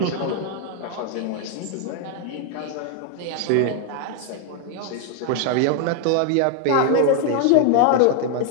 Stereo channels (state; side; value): different; both; correlation 0.00